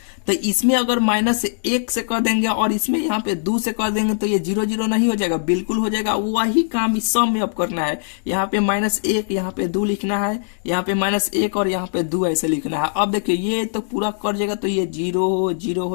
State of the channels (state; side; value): silent; right; digital silence